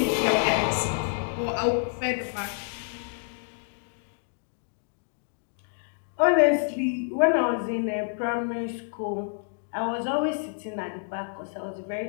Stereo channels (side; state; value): right; silent; digital silence